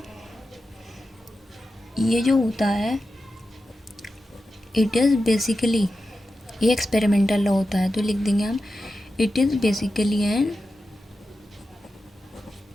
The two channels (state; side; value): normal; both; correlation 0.91